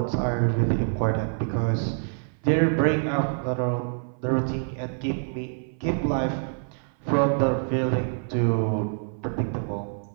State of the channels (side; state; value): left; silent; 57 dB below the other